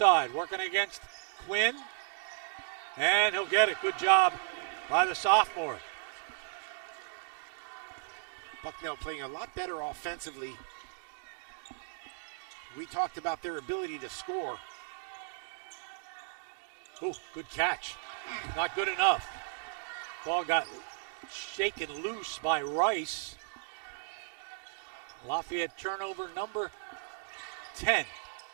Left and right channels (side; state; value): left; silent; digital silence